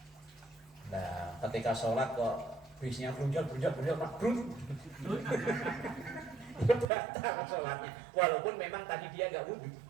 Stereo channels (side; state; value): left; drops out; at 6.9 s